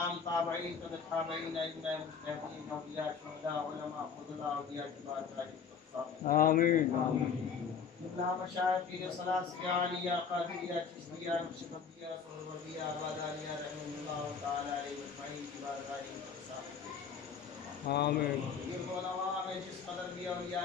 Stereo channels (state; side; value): quieter; right; 6.3 dB